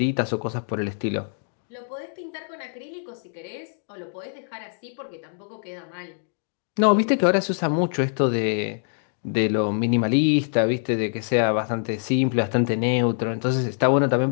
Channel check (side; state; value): right; silent; 60 dB below the other